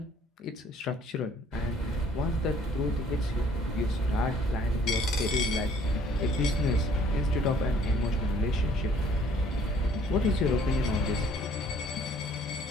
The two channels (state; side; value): normal; both; correlation 0.59